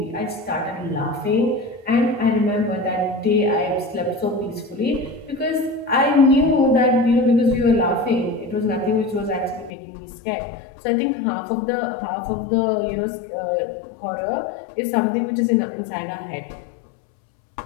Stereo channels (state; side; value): drops out; right; at 9.7 s